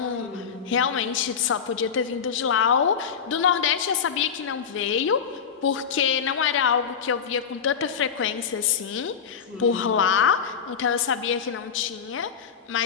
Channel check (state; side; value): quieter; right; 7.1 dB